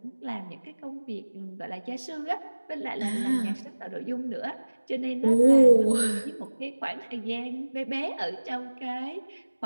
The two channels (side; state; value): both; inverted; correlation -1.00